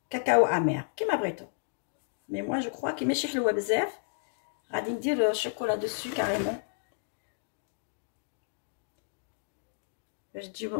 كاكاو امير كيما بغيتو. مي moi je crois كي ماشي حلوه بزاف غادي ندير الشوكولا دوسو كاريمون باش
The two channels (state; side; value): silent; right; digital silence